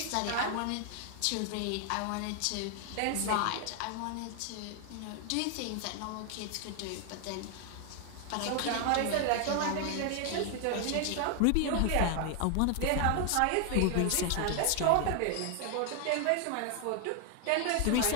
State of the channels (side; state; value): both; different; correlation 0.00